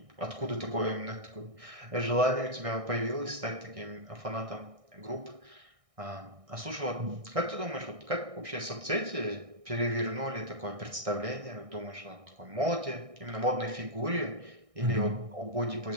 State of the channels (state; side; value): late; left; 1.6 ms